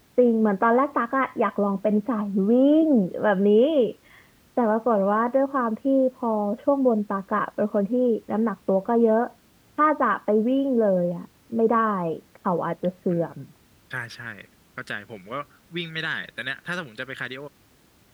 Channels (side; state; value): both; identical; correlation 1.00